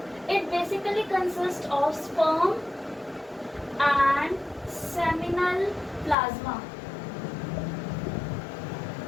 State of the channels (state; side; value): drops out; right; at 6.2 s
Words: It basically consists of sperm and seminal plasma.